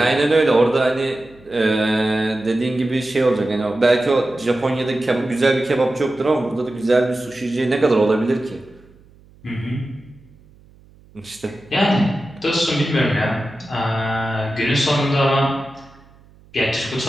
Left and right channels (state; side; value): noise; right; hum, 27 dB below the sound